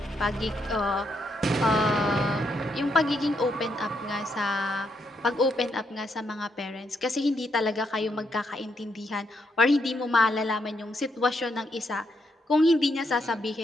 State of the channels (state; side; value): normal; both; correlation 0.78